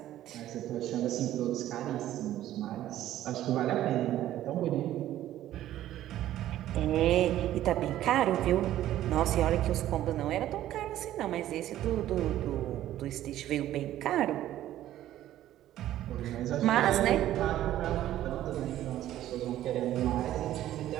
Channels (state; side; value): quieter; left; 13.1 dB